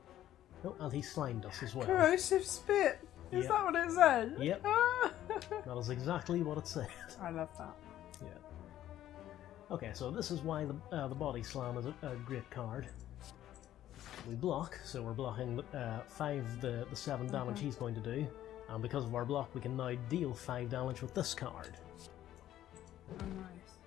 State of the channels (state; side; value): quieter; right; 12.6 dB